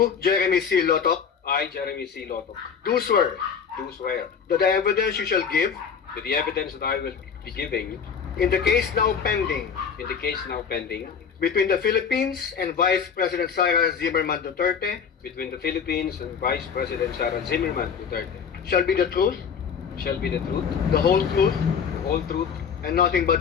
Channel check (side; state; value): right; quieter; 6.7 dB